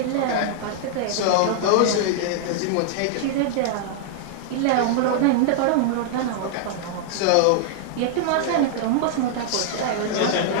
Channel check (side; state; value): both; different; correlation -0.01